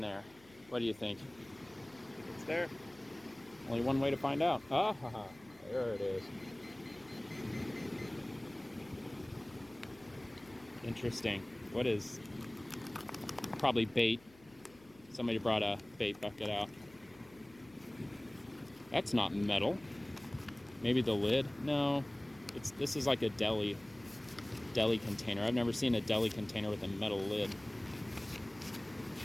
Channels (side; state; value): left; noise; hum, 26 dB below the sound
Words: What do you think? It's there. Only one way to find out. Ah, there it is. Interesting. What is? Probably bait. Somebody brought a bait bucket out. That's not metal. Maybe the lid? No. This is like a deli container. I've never seen a deli container with a metal lid.